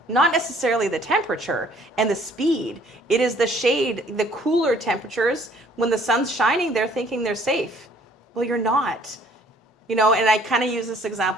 not necessarily the temperature and the speed. It is the shade, the cooler temperatures. When the sun's shining, they're thinking they're safe. Well, you're not. And I kind of use this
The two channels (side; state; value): both; normal; correlation 0.59